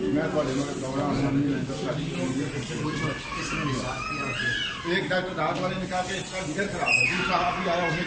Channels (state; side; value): identical; both; correlation 1.00